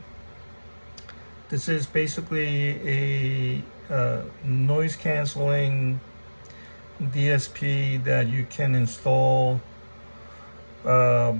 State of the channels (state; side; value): inverted; both; correlation -1.00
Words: This is basically a noise canceling DSP that you can install